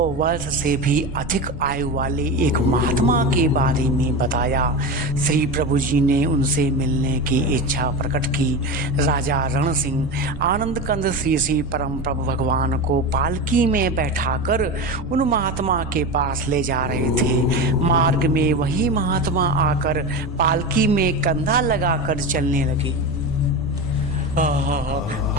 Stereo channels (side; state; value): right; noise; rumble, 14 dB below the sound